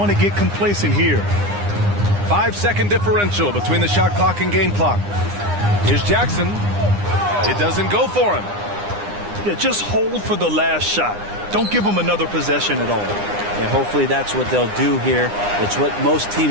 to get complacent here. 5-second differential between the shot clock and game clock. Here's Jackson. It doesn't go for him. Yeah, just hold for the last shot. Don't give him another possession at all. Yeah, hopefully that's what they'll do here. It's what most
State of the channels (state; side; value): late; left; 9.8 ms